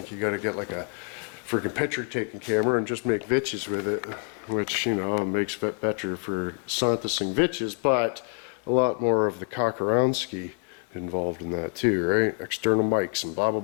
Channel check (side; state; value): right; quieter; 39.6 dB